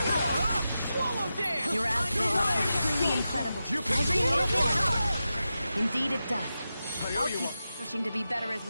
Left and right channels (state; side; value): inverted; both; correlation -0.91